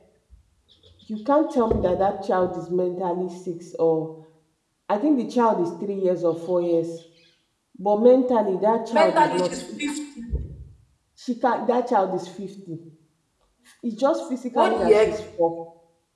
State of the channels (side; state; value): both; identical; correlation 1.00